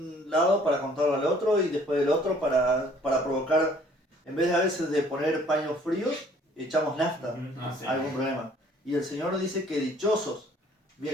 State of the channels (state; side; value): normal; both; correlation 0.57